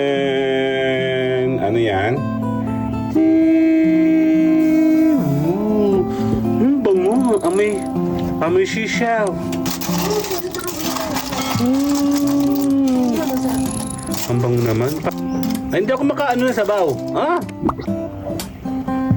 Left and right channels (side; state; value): both; identical; correlation 1.00